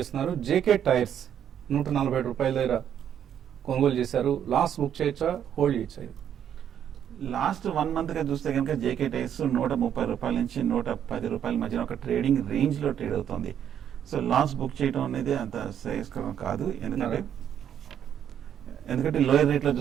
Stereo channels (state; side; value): quieter; left; 9.4 dB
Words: జేకే టైర్స్ 140 రూపాయల దగ్గర కొనుగోలు చేశారు, లాస్ బుక్ చేయొచ్చా, హోల్డ్ చేయొచ్చా? లాస్ట్ 1 మంత్ గా చూస్తే కనుక జేకే టైర్స్ 130 రూపాయల నుంచి 110 రూపాయల మధ్యన ఒక ట్రేడింగ్ రేంజ్ లో ట్రేడ్ అవుతుంది. సో లాస్ బుక్ చేయడం అనేది అంత శ్రేయస్కరం కాదు. ఎందుకంటే లోయర్ రేట్ లో